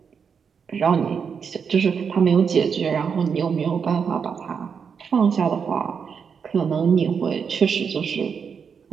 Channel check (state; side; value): quieter; left; 6.4 dB